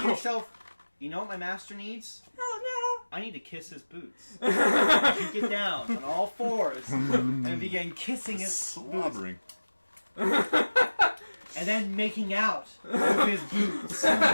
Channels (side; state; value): both; inverted; correlation -1.00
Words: yourself, you know what my master needs? Oh no! I need to kiss his boots. You get down on all fours and begin kissing his boots. Slobbering. And and then making out with his boots.